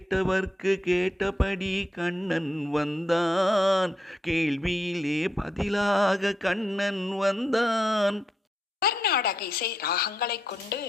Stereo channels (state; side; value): normal; both; correlation 0.82